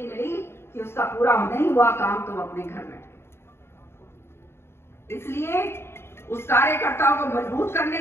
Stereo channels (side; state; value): right; late; 0.12 ms